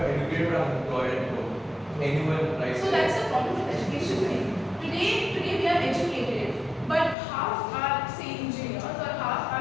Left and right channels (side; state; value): right; drops out; at 7.2 s